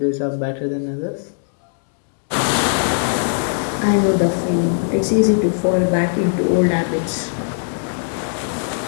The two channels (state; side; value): silent; right; 66 dB below the other